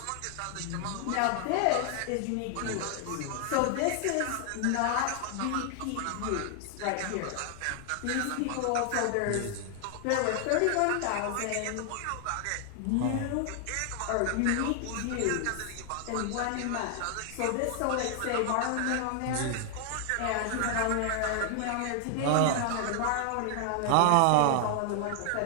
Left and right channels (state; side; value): different; both; correlation 0.00